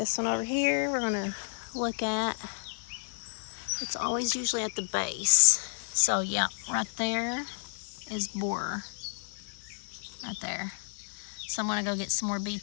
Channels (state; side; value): silent; right; digital silence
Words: one over here we're going to look at. It's always usually at the base. So yeah, right there is borer. Right there. So I'm going to go get some more